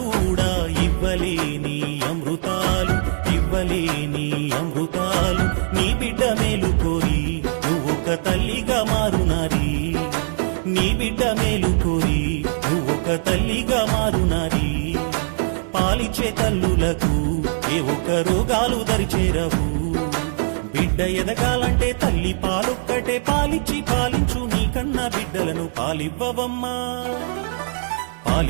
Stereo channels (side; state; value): left; silent; digital silence